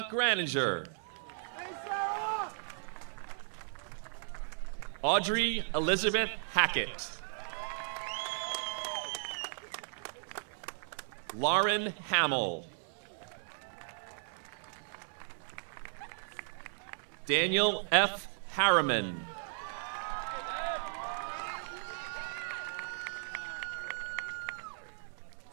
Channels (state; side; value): silent; left; 54 dB below the other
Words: Graninger. Audrey Elizabeth Hackett. Lauren Hamill. Daniel F. Harriman.